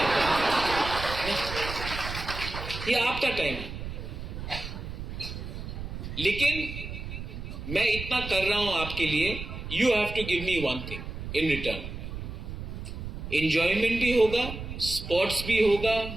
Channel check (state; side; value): noise; right; rumble, 8 dB below the sound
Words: ये आपका टाइम है, लेकिन मैं इतना कर रहा हूं आपके लिए, you have to give me one thing in return. Enjoyment भी होगा, स्पोर्ट्स भी होगा,